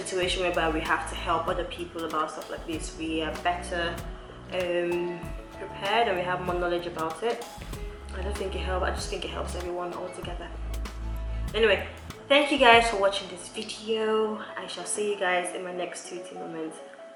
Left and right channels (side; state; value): both; identical; correlation 1.00